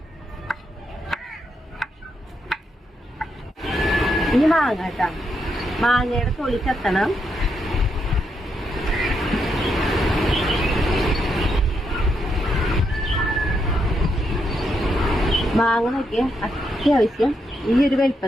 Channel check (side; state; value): both; normal; correlation 0.80